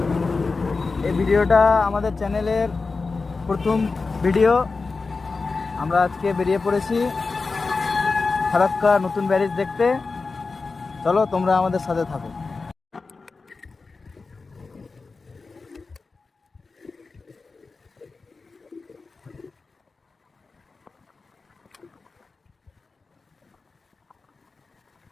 এই ভিডিওটা আমাদের চ্যানেলের প্রথম ভিডিও। আমরা আজকে বেরিয়ে পড়েছি ফারাক্কা নতুন ব্যারেজ দেখতে। চলো তোমরা আমাদের সাথে থাকো।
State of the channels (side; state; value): right; quieter; 4.1 dB